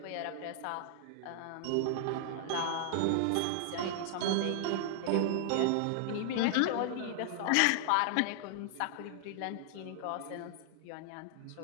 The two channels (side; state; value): both; different; correlation 0.00